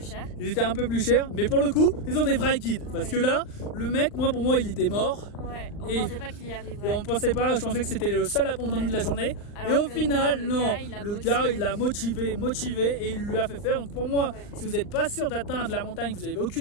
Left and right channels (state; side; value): late; right; 39 ms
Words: chers. Ils étaient un peu plus chers, mais pour le coup, ils ont des vrais guides. Parce que là, le mec, pour moi, il était mort. Ouais, on pensait pas qu'il y arriverait. Et on pensait pas, je pensais que c'était le seul abandon de la journée. Alors et au final, le gars, il l'a motivé et il lui a fait faire. Donc pour moi, si vous n'êtes pas sûr d'atteindre la montagne, vous n'avez